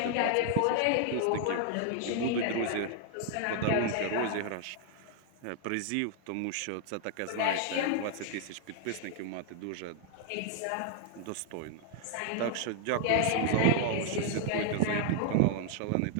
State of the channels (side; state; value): both; different; correlation 0.00